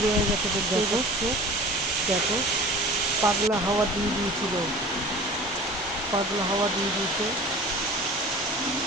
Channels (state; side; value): normal; both; correlation 0.41